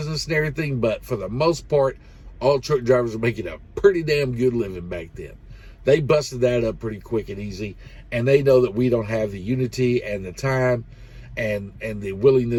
and everything, but for the most part, all truck drivers were making a pretty damn good living back then. They busted that up pretty quick and easy, and they know that we don't have the unity and the time and the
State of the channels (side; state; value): both; identical; correlation 1.00